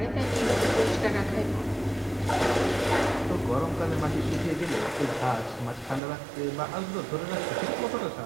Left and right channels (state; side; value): drops out; left; at 6.0 s